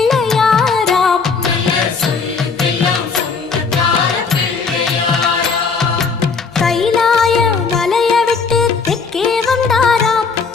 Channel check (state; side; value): quieter; right; 5.0 dB